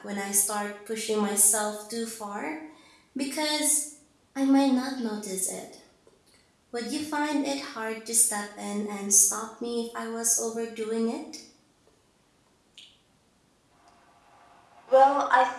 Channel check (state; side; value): identical; both; correlation 1.00